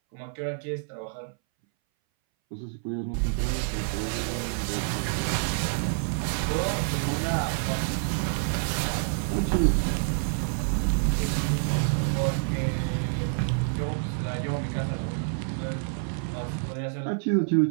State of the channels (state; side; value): silent; left; 59 dB below the other